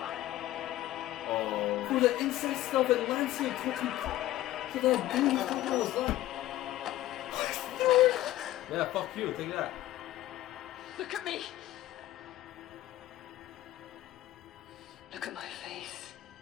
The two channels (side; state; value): right; quieter; 14.8 dB